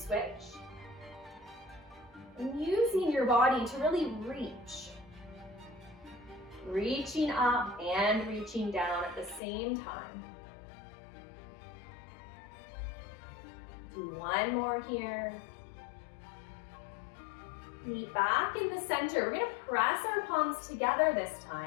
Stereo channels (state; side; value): drops out; right; at 9.4 s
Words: And using your body to really reach. Reaching up and reaching down at the same time. Do one more here. Knee back in the center. We're gonna press our palms together this